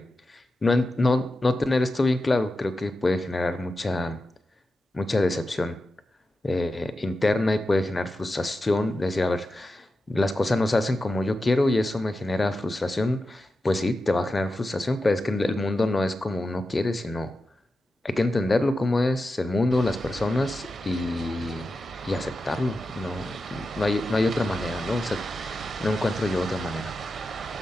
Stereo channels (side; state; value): both; normal; correlation 0.91